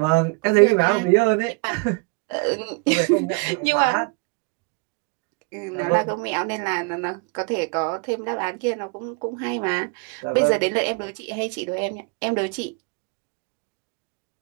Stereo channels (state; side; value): quieter; left; 30.8 dB